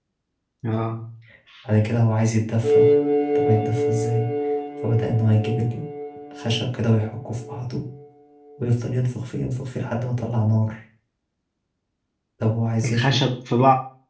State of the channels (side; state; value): both; identical; correlation 1.00